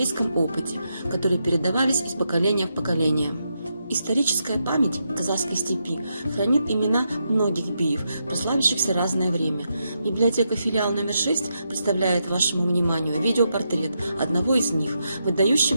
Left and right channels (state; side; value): inverted; both; correlation -0.83